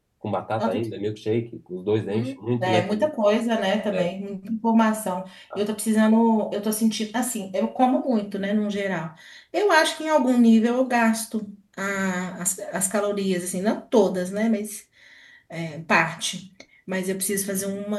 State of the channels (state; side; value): identical; both; correlation 1.00